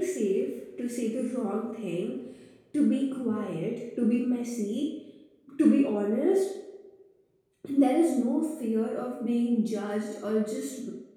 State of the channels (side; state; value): both; identical; correlation 1.00